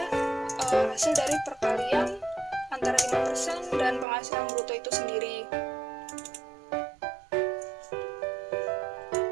hasil dari perkalian antara 5% dan penghasilan bruto itu sendiri.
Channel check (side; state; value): left; drops out; at 4.0 s